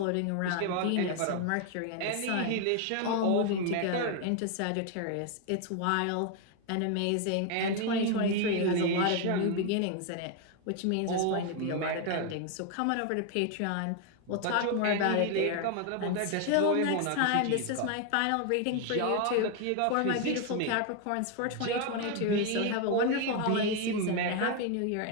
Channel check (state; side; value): different; both; correlation 0.01